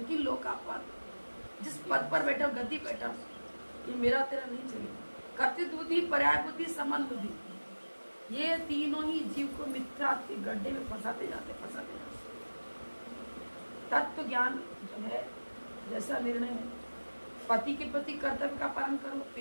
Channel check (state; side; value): inverted; both; correlation -1.00